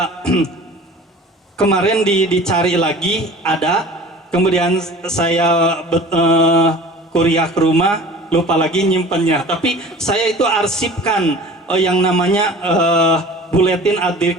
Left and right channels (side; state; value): both; normal; correlation 0.42